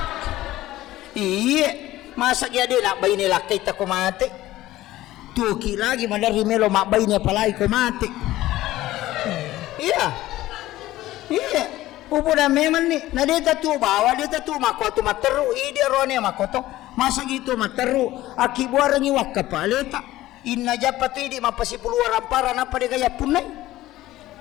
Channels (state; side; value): quieter; right; 15.9 dB